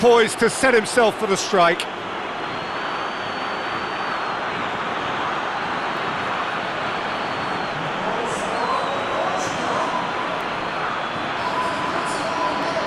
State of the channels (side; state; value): both; identical; correlation 1.00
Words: poise to set himself for the strike.